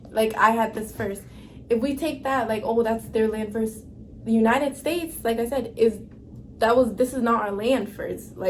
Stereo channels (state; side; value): identical; both; correlation 1.00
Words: Like, I had this first. If we take that, like, oh, that's their land first. The United States, like I said, this is not our land first.